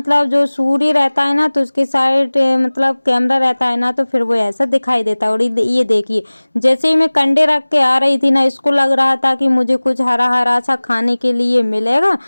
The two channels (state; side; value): inverted; both; correlation -1.00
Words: जो सूर्य रहता है ना तो उसके साइड मतलब कैमरा रहता है ना, तो फिर वो ऐसा दिखाई देता है। और ये देखिए, जैसे ही मैं कंडे रख के आ रही थी ना, इसको लग रहा था कि मुझे कुछ हरा हरा सा खाने के लिए मिलेगा,